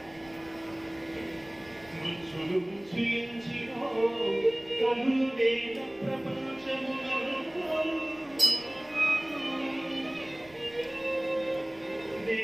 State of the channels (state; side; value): noise; right; rumble, 27 dB below the sound